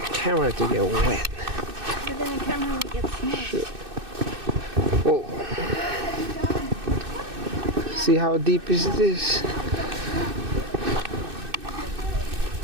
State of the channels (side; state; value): left; late; 2.6 ms